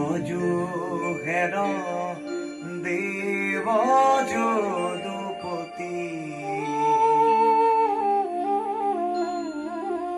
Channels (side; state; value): both; identical; correlation 1.00